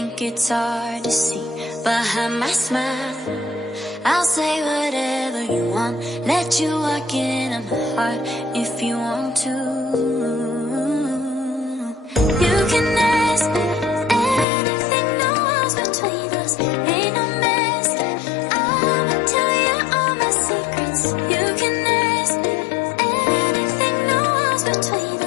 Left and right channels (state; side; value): drops out; right; at 14.5 s